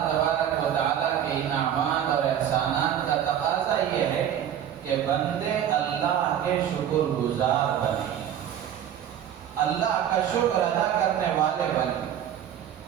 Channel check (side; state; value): left; quieter; 9.9 dB